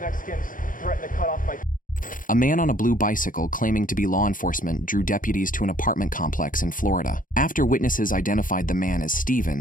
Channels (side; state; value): right; late; 0.39 ms